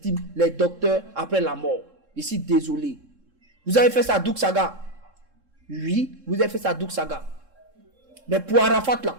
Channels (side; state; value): left; late; 3.7 ms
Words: les docteurs après la mort. Je suis désolé. Vous avez fait ça à Douk Saga. Oui, vous avez fait ça à Douk Saga. Mais pour Arafat là,